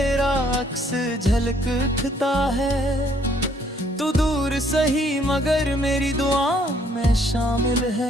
अक्स झलक उठता है। तू दूर सही मगर मेरी दुआ में शामिल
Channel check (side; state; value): both; normal; correlation 0.65